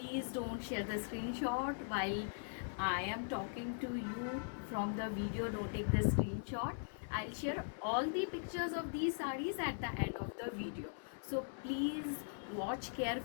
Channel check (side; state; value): right; silent; digital silence